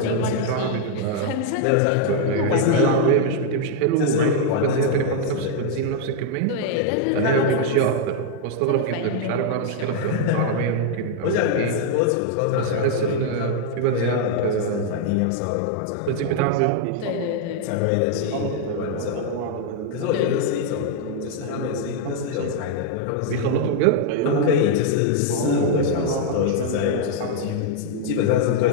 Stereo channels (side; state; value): both; different; correlation -0.01